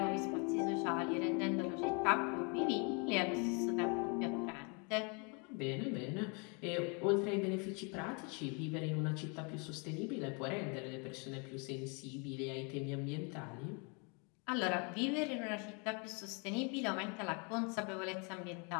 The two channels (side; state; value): right; quieter; 34.0 dB